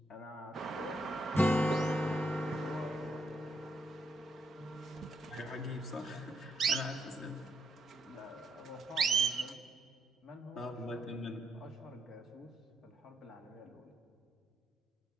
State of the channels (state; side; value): normal; both; correlation 0.78